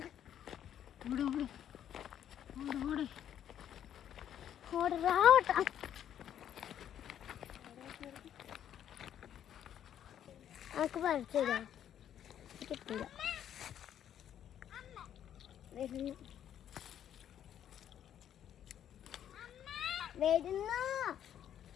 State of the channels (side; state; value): right; quieter; 10.1 dB